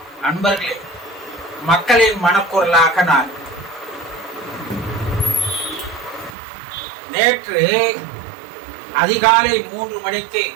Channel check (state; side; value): drops out; left; at 6.4 s